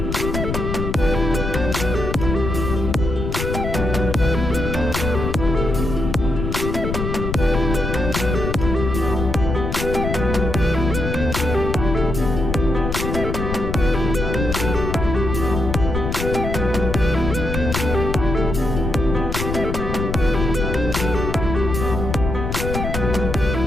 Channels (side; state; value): left; noise; rumble, 3 dB below the sound